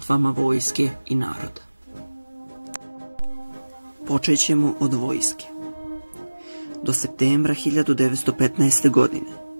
vojske i naroda. Počet ćemo od vojske. Do septembra 1915. godine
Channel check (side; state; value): both; inverted; correlation -1.00